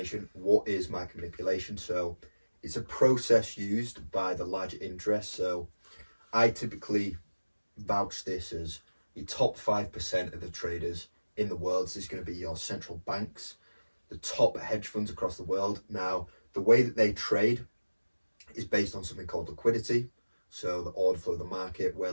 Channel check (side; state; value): both; inverted; correlation -1.00